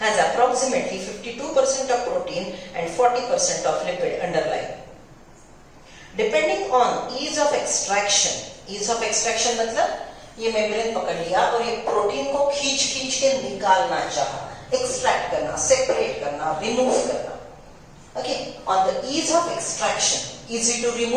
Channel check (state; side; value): identical; both; correlation 1.00